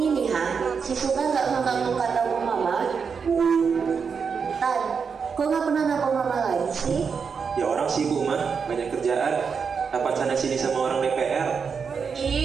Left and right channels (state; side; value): quieter; left; 6.0 dB